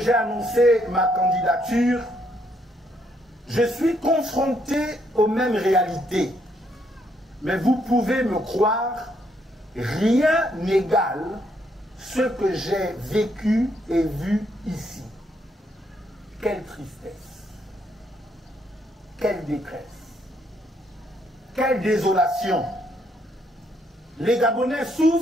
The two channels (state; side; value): normal; both; correlation 0.73